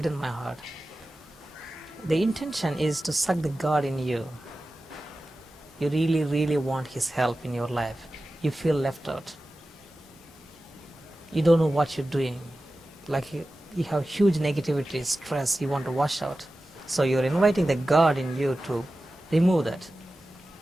in my heart. The intention is to suck the God in you. You really, really want His help in your life. You feel left out. You don't know what you're doing. Like you have huge negativity, stress, you want to wash out. So you're inviting the God in you to remove that.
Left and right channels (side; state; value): both; normal; correlation 0.95